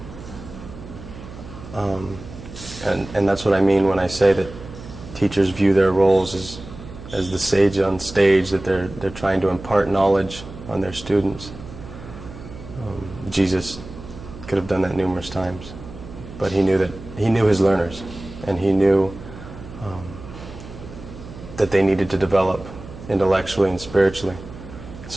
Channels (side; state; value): right; noise; hum, 14 dB below the sound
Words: And that's what I mean when I say that teachers view their roles as the sage on stage, that they're trying to impart knowledge on their students. Jesus could have done that numerous times, but he knew his learners, and he knew that they needed to develop intellectually and spiritually.